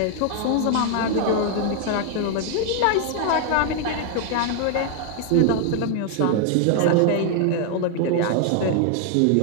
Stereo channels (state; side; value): different; both; correlation 0.00